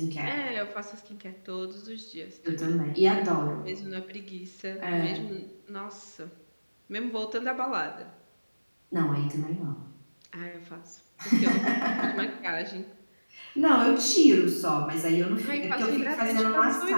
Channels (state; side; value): inverted; both; correlation -1.00